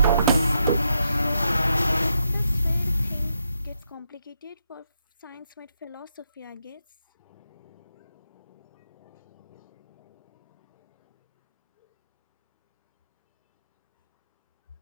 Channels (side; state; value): both; inverted; correlation -0.81